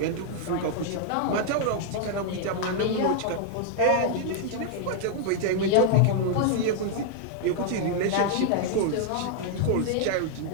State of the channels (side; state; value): both; different; correlation 0.00